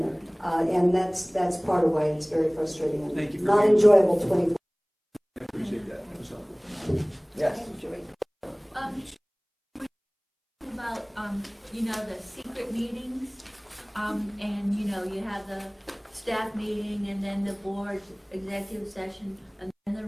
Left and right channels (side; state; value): both; identical; correlation 1.00